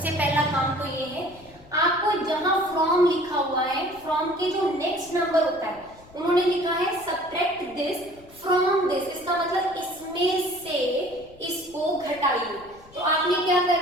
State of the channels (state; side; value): noise; left; rumble, 24 dB below the sound